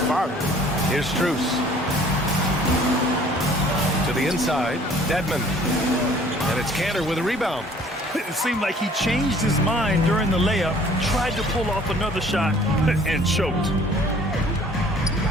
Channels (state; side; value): normal; both; correlation 0.54